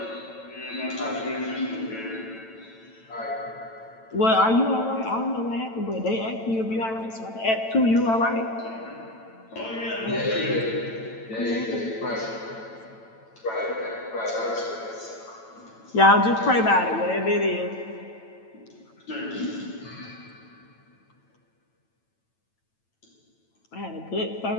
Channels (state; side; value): late; right; 9.0 ms